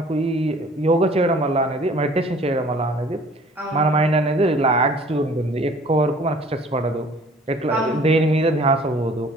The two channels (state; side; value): normal; both; correlation 0.52